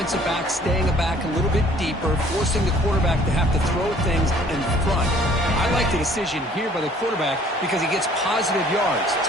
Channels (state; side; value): normal; both; correlation 0.56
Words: backs staying back a little bit deeper, forcing the quarterback to have to throw things in front. I like the decision here by the quarterback because he gets positive yards. It's